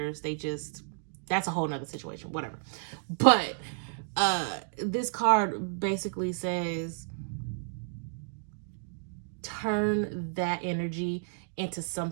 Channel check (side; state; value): left; silent; digital silence